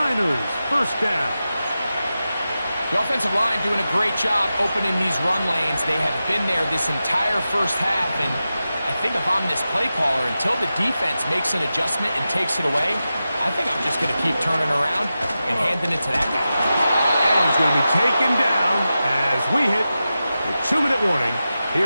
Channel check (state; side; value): inverted; both; correlation -0.92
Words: first down. The offensive line doing a great job opening these run lanes. They have been there this entire first half, and I think if I'm this play caller, until the defense makes an adjustment and takes it away, I think I'm just going to keep turning around and handing it to that guy. And he's going to be taken down as we hit the 2-minute warning